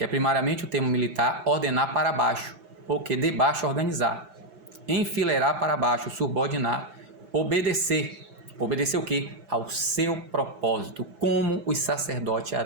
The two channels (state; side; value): late; left; 5.9 ms